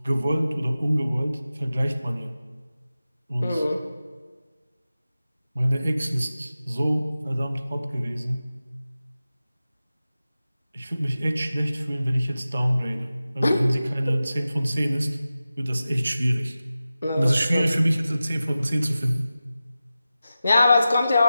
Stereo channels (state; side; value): inverted; both; correlation -0.94